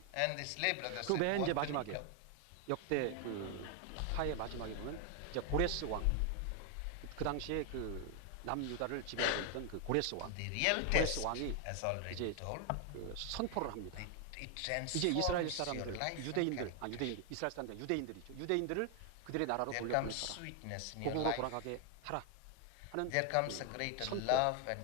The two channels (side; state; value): both; different; correlation 0.00